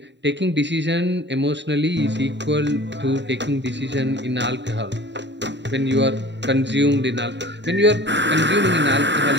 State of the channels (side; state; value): left; late; 0.52 ms